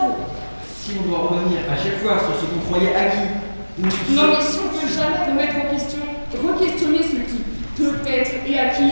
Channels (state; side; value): inverted; both; correlation -1.00